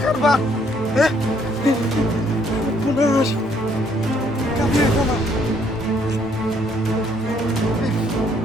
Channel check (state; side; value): normal; both; correlation 0.67